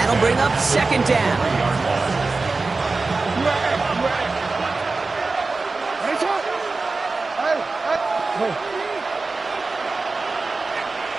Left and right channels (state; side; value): quieter; left; 3.8 dB